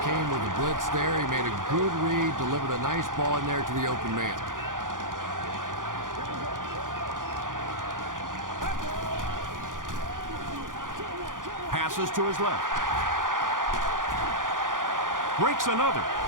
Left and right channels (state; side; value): late; left; 0.89 ms